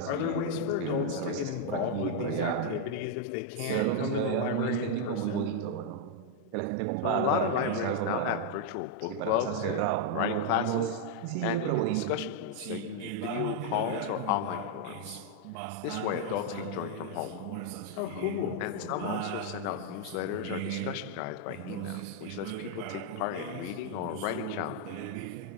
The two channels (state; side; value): different; both; correlation 0.00